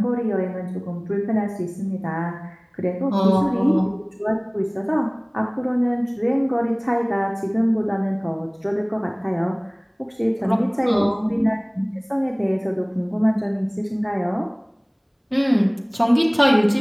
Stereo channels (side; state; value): both; identical; correlation 1.00